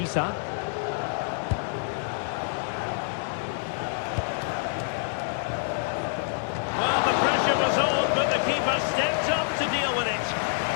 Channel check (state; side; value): silent; right; digital silence